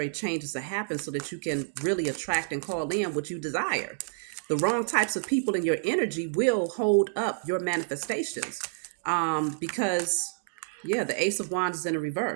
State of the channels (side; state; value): left; silent; 59 dB below the other